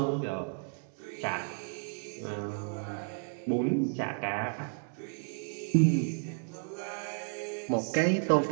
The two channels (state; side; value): silent; left; 56 dB below the other